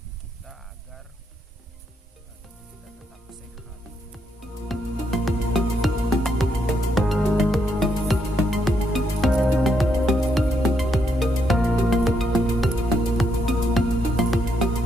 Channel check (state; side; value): normal; both; correlation 0.77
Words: kita agar tubuh kita tetap sehat.